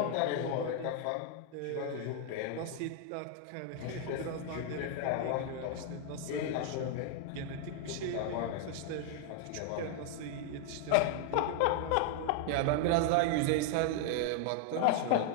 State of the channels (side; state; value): both; different; correlation 0.00